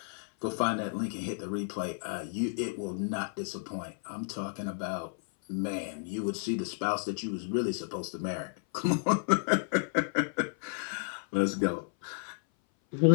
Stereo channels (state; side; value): silent; right; 57 dB below the other